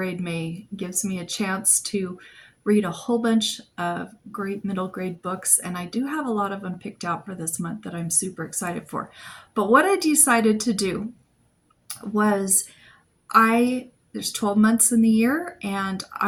May. It gives me a chance to read a whole bunch of great middle grade books, and I do have a lot of them picked out for this month that I'm super excited for. But what I decided to do was there's 12 months in the year, and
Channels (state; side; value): identical; both; correlation 1.00